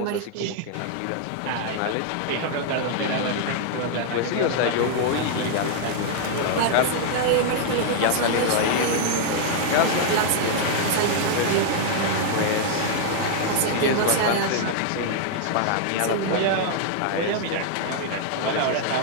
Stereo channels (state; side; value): different; both; correlation 0.00